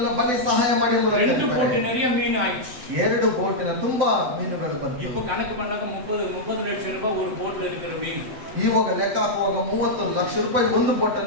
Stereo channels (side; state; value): left; late; 7.5 ms